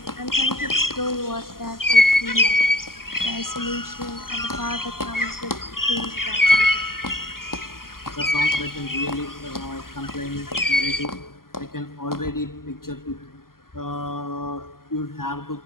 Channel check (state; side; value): late; right; 0.92 ms